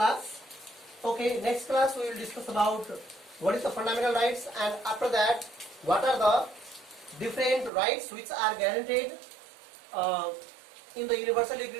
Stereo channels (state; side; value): drops out; left; at 7.7 s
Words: Okay, next class we will discuss about what is the fundamental rights, and after that what are the different rights which are guaranteed in the Universal